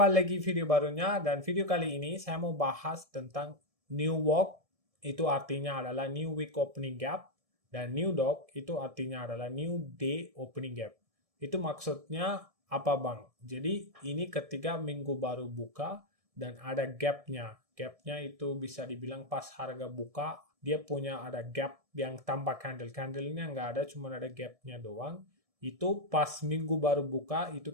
lagi video barunya dan video kali ini saya mau bahas tentang New Walk, itu artinya adalah New Week Opening Gap, dan New Dog itu artinya adalah New Day Opening Gap. Itu maksudnya apa bang? Jadi ini ketika minggu baru buka dan ada gapnya. Gapnya itu bisa dibilang pas harga buka, dia punya ada gap yang tanpa candle. Candlenya nggak ada, cuma ada gapnya doang. Itu pas minggu baru buka, itu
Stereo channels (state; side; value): late; left; 1.6 ms